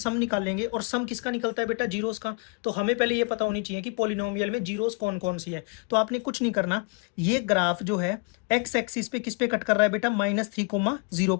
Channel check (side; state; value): right; quieter; 33.0 dB